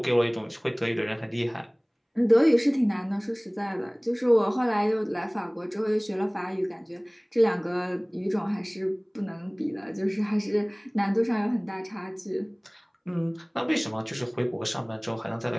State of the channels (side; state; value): both; identical; correlation 1.00